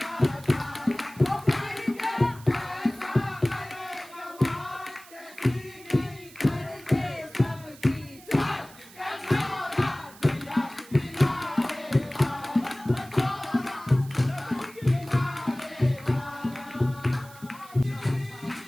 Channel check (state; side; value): noise; right; hiss, 21 dB below the sound